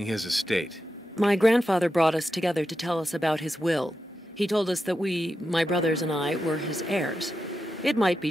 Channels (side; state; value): both; normal; correlation 0.89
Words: his estate? My grandfather brought us together to tell us about his will. He told us that we, my brothers and I, were his heirs. It might be